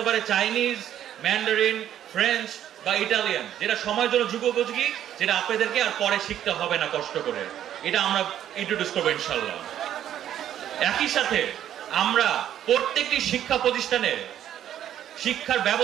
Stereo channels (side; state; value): left; quieter; 10.9 dB